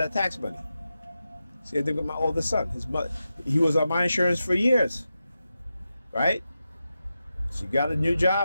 tax money. See, I think with my oldest son, he was on my insurance for years, right? She got a new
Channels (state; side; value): inverted; both; correlation -0.90